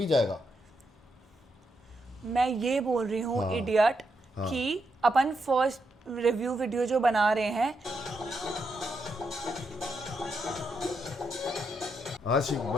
जाएगा। मैं ये बोल रही हूँ इडियट कि अपन फर्स्ट रिव्यू वीडियो जो बना रहे हैं, आशिक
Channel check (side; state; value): both; normal; correlation 0.82